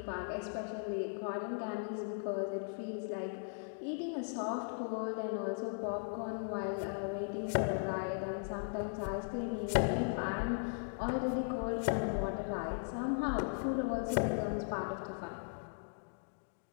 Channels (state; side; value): silent; right; digital silence